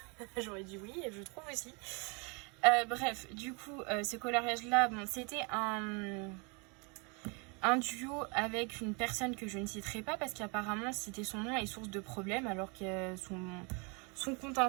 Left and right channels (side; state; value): left; quieter; 32.5 dB